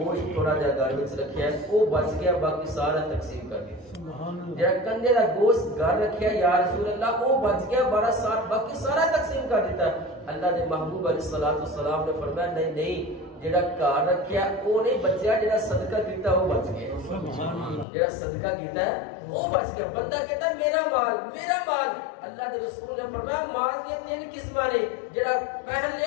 تھوڑا جہا گھر وچ رکھیا ہے وہ بچ گیا باقی سارا تقسیم کر دیا جڑا کندے دا گوشت گھر رکھیا یا رسول اللہ وہ بچ گیا باقی سارا تقسیم کر دیتا ہے اللہ دے محبوب علیہ الصلوۃ والسلام نے فرمایا نہیں نہیں جڑا گھر رکھیا وہ نہیں بچیا جڑا صدقہ کیتا وہ بچ گیا جڑا صدقہ کیتا ہے وہ بچ گیا بندہ کہتا ہے میرا مال اللہ کے رسول نے فرمایا مال کی تین قسماں نے جڑا پہن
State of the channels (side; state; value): right; drops out; at 17.9 s